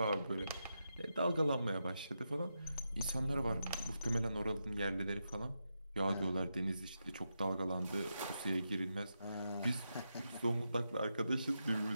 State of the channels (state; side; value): inverted; both; correlation -0.87